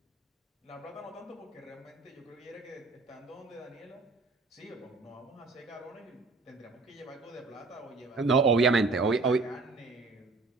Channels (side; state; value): left; quieter; 3.8 dB